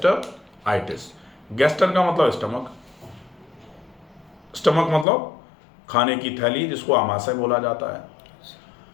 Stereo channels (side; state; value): right; drops out; at 5.1 s